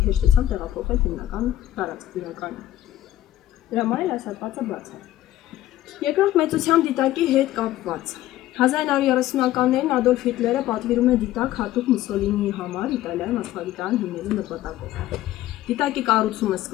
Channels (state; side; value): quieter; right; 14.2 dB